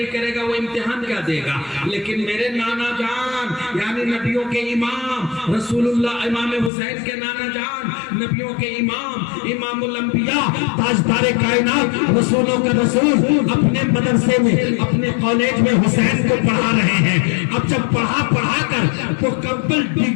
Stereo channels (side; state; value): right; drops out; at 6.7 s